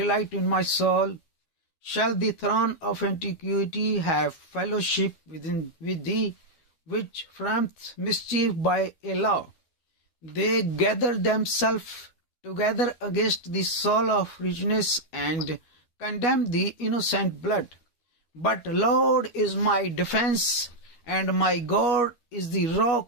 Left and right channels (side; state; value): right; late; 12 ms